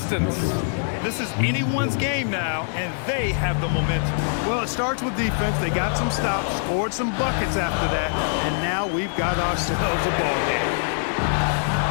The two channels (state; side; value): silent; right; digital silence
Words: This is anyone's game now, and they have the momentum. Well, it starts with defense. They got some stops, scored some buckets after that, and now we've got ourselves a ball game.